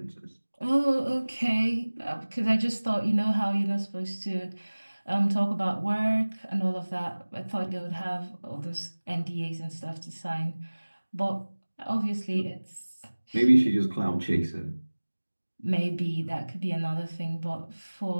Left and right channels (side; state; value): both; inverted; correlation -1.00